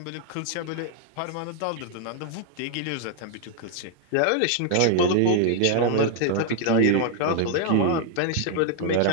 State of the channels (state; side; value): different; both; correlation 0.00